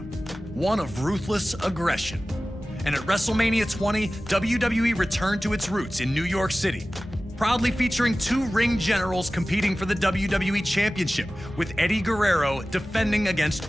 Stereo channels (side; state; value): both; normal; correlation 0.96